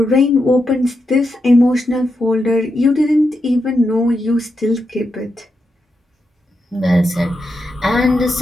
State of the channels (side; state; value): both; normal; correlation 0.85